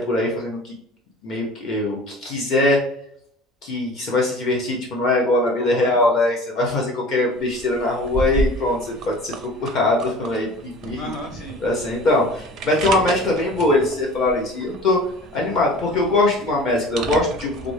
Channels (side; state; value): both; normal; correlation 0.42